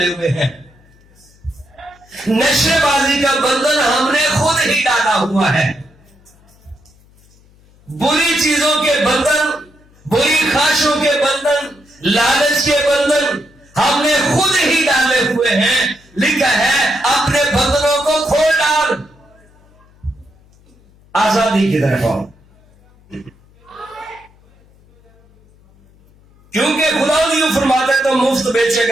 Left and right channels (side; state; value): left; noise; hum, 29 dB below the sound